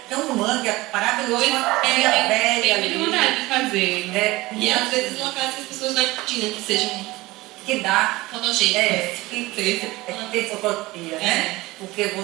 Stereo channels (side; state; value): left; quieter; 20.1 dB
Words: tem um mangue maravilhoso, uma ilha velha eu tenho muita vontade de fazer. né? E às vezes locais que as pessoas não imaginam que sejam Que dá fotogênicos. que tem fotografia, né? Porque